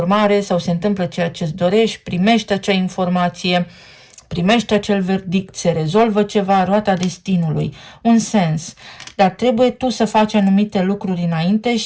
sau se întâmplă ceea ce-ți dorești, primești acea informație, primești acel verdict, se rezolvă ceva, roata destinului, un sens. Dar trebuie tu să faci anumite lucruri înainte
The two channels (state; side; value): identical; both; correlation 1.00